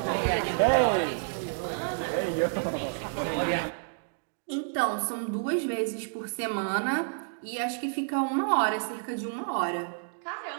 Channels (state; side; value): silent; left; digital silence